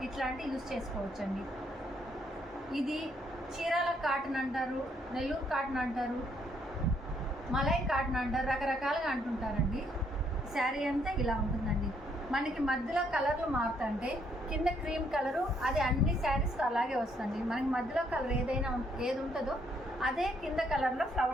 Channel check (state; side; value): normal; both; correlation 0.71